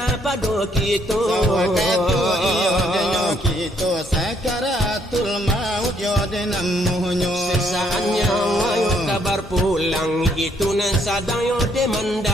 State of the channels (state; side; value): normal; both; correlation 0.69